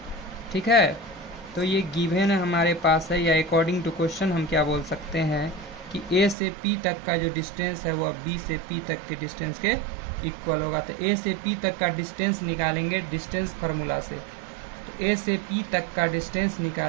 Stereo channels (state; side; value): drops out; left; at 6.4 s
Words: ठीक है, तो ये गिवन हमारे पास है, या अकॉर्डिंग टू क्वेश्चन हम क्या बोल सकते हैं कि ए से पी तक का जो डिस्टेंस है वह बी से पी तक के डिस्टेंस के इक्वल होगा। तो ए से पी तक का डिस्टेंस निकालेंगे डिस्टेंस फार्मूला से, तो ए से पी तक का डिस्टेंस